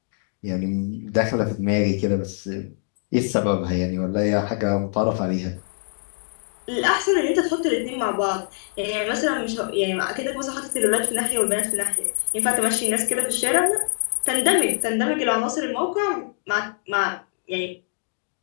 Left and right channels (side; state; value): right; silent; digital silence